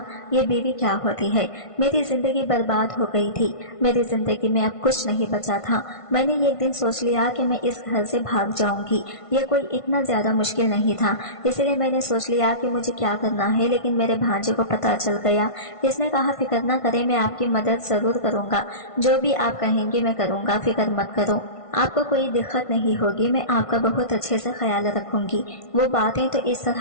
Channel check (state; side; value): late; right; 1.5 ms